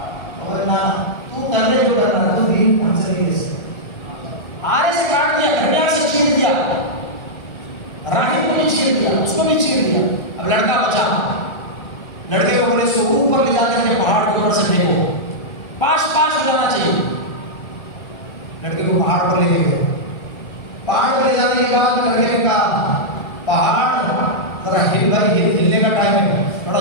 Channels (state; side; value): late; right; 1.4 ms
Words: اور نہ تو کر لے جو کرنا, تو دین کہاں سے لے سے آرے سے کاٹ دیا, گھڑیاں سے چیر دیا, راہب کو بھی چیر دیا, اس کو بھی چیر دیا. اب لڑکا بچا, لڑکے کو بولے اس کو اوپر لے جا کر کے پہاڑ کے اوپر سے پھینکو, پاش پاش ہو جانا چاہیے. لڑکے کو پہاڑ پر لے کے گئے, پہاڑ پر لے جانے کے بعد لڑکے نے کہا پہاڑ ذرا ہل بھائی, ہلنے کا ٹائم ہے, بڑا